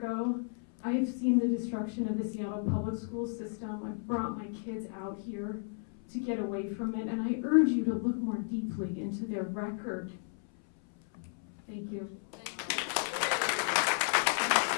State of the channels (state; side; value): silent; right; 56 dB below the other